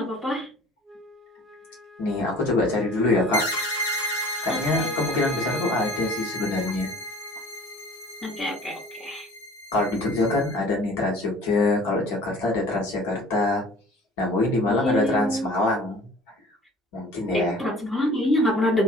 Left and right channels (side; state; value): both; normal; correlation 0.47